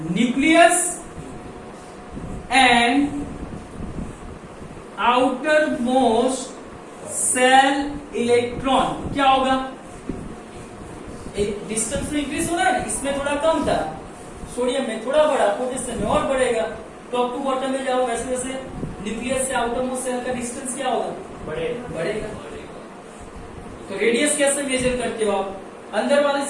nucleus and outer most shell electron. क्या होगा, एक डिस्टेंस में इंक्रीज हो रहा है, इसमें थोड़ा कम था, सोडियम में थोड़ा बढ़ा, पोटेशियम में और बढ़ेगा। टॉप टू बॉटम में जाओ, वैसे वैसे न्यूक्लियस से आउटर मोस्ट सेल का डिस्टेंस क्या होगा, बढ़ेगा। तो रेडियस कैसे मेजर करते हो आप, अंदर वाले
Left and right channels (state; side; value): identical; both; correlation 1.00